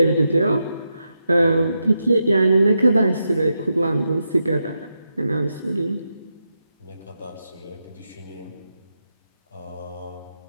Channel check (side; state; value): both; inverted; correlation -0.86